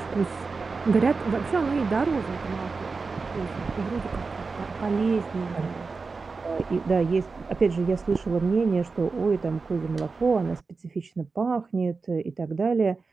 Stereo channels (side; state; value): left; quieter; 4.4 dB